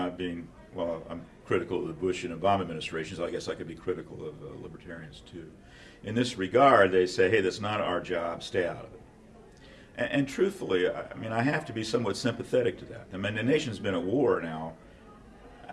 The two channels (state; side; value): identical; both; correlation 1.00